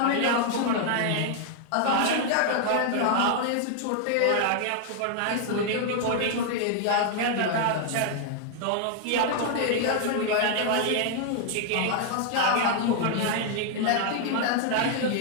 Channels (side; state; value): both; different; correlation 0.00